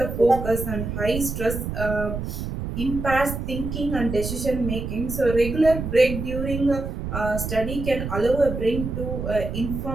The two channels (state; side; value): noise; right; rumble, 5 dB below the sound